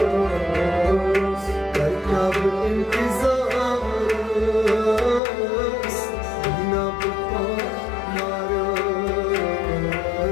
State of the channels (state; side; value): drops out; right; at 5.2 s